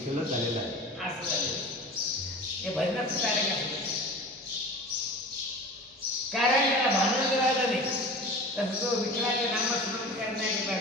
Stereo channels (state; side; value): normal; both; correlation 0.37